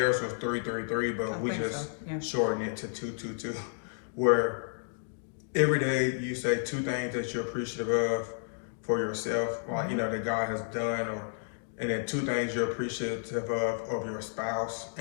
was 3-3-3, but we just shortened it to 2-2-2, where every day you say 2 things that you're appreciative of for yourself, like, you know, that God has done, and then 2 things you're appreciative of your spouse,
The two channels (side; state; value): right; silent; digital silence